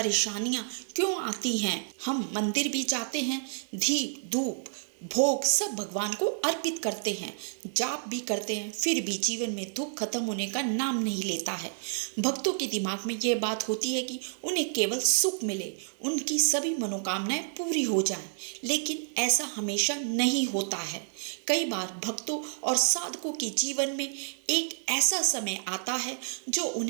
क्यों आती हैं। हम मंदिर भी जाते हैं, दीप धूप भोग सब भगवान को अर्पित करते हैं, जाप भी करते हैं, फिर भी जीवन में दुख खत्म होने का नाम नहीं लेता है। भक्तों के दिमाग में यह बात होती है कि उन्हें केवल सुख मिले, उनकी सभी मनोकामनाएं पूरी हो जाएं, लेकिन ऐसा हमेशा नहीं होता है। कई बार भक्तों और साधकों के जीवन में एक ऐसा समय आता है जो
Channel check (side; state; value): left; silent; digital silence